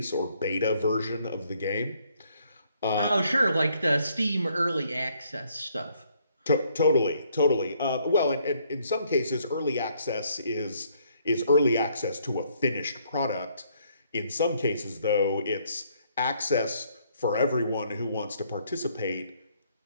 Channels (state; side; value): inverted; both; correlation -0.68